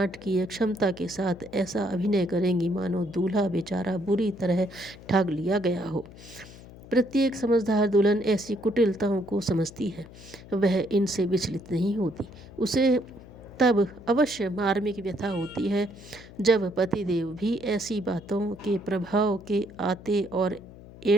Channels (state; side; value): noise; left; hum, 18 dB below the sound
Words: क्षमता के साथ ऐसा अभिनय करेंगी मानो दूल्हा बेचारा बुरी तरह ठग लिया गया हो। प्रत्येक समझदार दुल्हन ऐसी कुटिलताओं को समझती है, वह इनसे विचलित नहीं होती। उसे तब अवश्य मार्मिक व्यथा होती है जब पतिदेव भी ऐसी बातों के प्रभाव के आते और